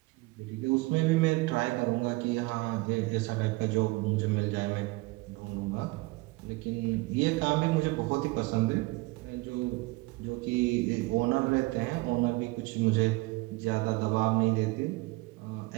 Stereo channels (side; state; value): left; quieter; 23.4 dB